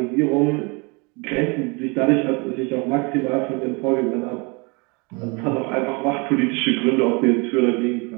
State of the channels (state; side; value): quieter; left; 29.9 dB